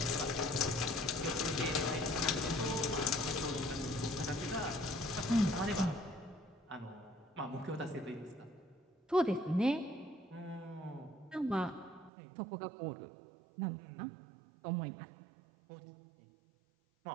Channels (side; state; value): left; drops out; at 12.1 s